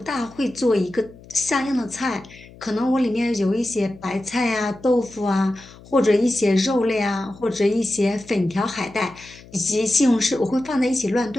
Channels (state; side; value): noise; left; hum, 21 dB below the sound